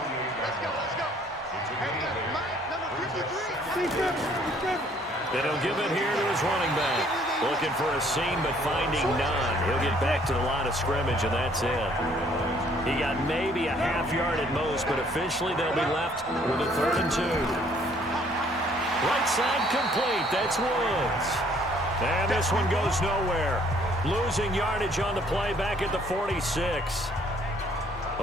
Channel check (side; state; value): both; normal; correlation 0.62